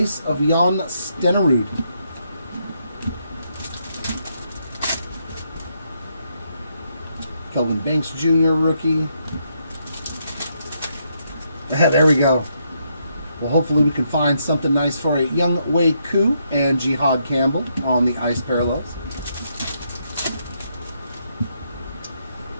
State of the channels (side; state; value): both; inverted; correlation -0.77